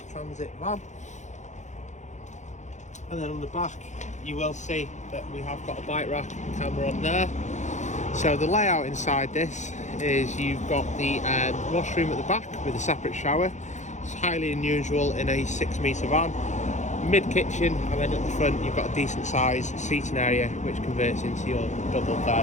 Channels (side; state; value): right; late; 0.34 ms